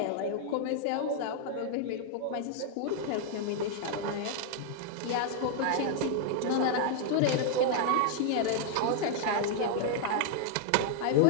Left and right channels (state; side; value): different; both; correlation -0.01